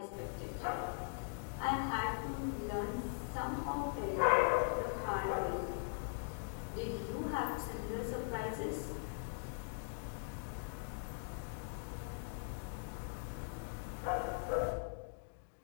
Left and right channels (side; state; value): right; silent; digital silence